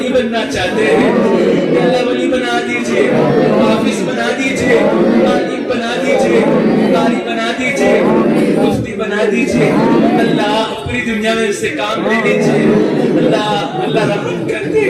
بننا چاہتے ہیں، یا اللہ ولی بنا دیجیے، حافظ بنا دیجیے، عالم بنا دیجیے، قاری بنا دیجیے، مفتی بنا دیجیے، اللہ پوری دنیا میں اس سے کام لے لیجیے۔ اللہ اللہ رحم کر دے،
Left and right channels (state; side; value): identical; both; correlation 1.00